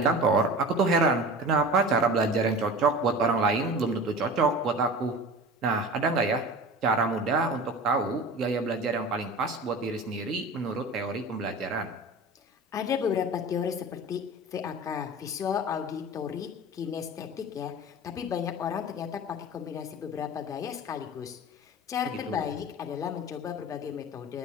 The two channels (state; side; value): normal; both; correlation 0.36